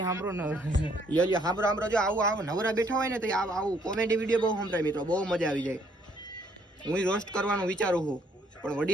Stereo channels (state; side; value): normal; both; correlation 0.67